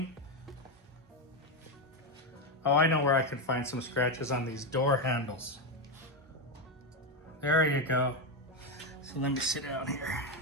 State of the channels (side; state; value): both; normal; correlation 0.09